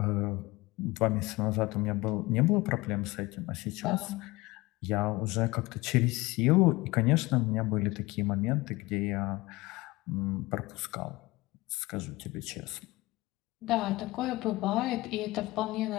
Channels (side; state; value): right; quieter; 21.0 dB